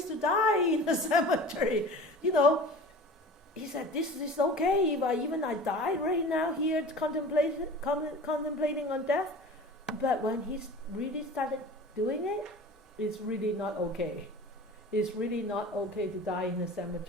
to die, in the cemetery. He said, this is okay if I die right now here contemplating on death. But when he really started doing it, it's really not okay. It's really not okay to die in the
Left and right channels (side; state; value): both; normal; correlation 0.38